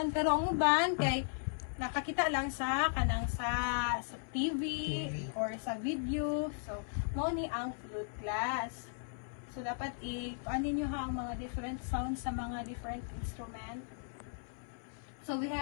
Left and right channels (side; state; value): right; silent; 53 dB below the other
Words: Pero ang uban, kay nakakita lang sa kanang sa TV or sa video. So, mo ni ang flute class. So, dapat i-panin nyo ha ang mga different sounds sa mga different instrument. So, we